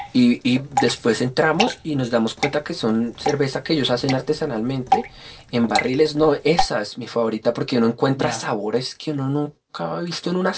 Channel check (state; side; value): identical; both; correlation 1.00